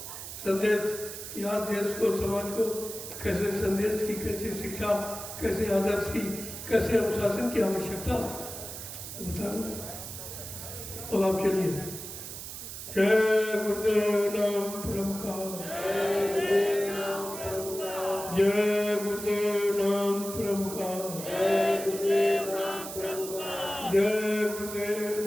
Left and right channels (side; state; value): right; noise; hiss, 9 dB below the sound